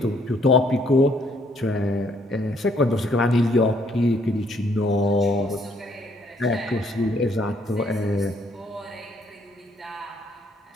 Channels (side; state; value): both; normal; correlation 0.67